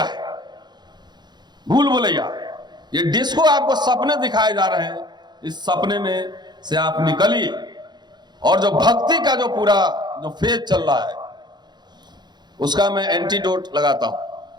भूल भुलैया, ये डिस्को आपको सपने दिखाए जा रहे हैं, इस सपने में से आप निकलिए और जो भक्ति का जो पूरा जो फेज चल रहा है उसका मैं एंटीडोट लगाता हूं।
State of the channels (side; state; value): left; late; 0.21 ms